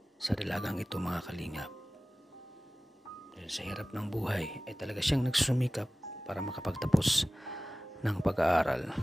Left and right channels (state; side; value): normal; both; correlation 0.97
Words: sa dalagang ito mga kalingap. Dahil sa hirap ng buhay ay talaga siyang nagsusumikap para makapagtapos ng pag-aaral.